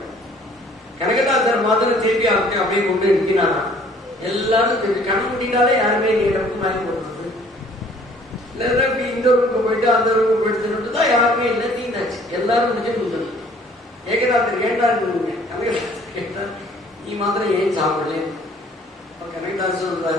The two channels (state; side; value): normal; both; correlation 0.56